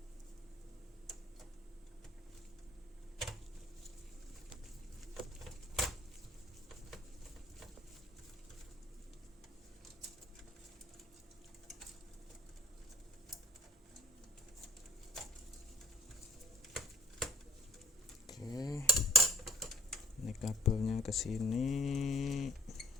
Oke, ini kabelnya ke sini.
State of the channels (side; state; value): both; normal; correlation 0.50